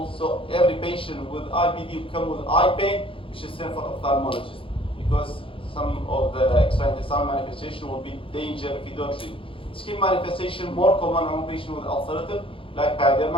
So every patient with IBD will come with eye pain, we should send for ophthalmologist because some of the extraintestinal manifestation will be danger if you don't treat. Skin manifestation more common among patients with ulcerative, like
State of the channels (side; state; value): right; late; 0.26 ms